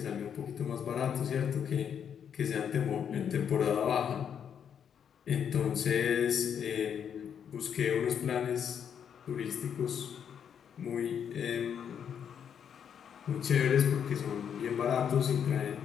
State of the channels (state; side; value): quieter; right; 8.1 dB